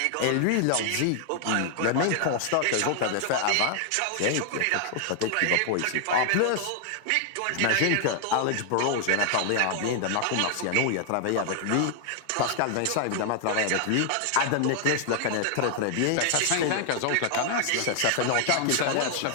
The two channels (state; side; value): different; both; correlation 0.00